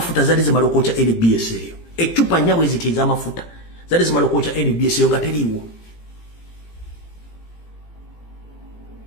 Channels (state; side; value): late; right; 18 ms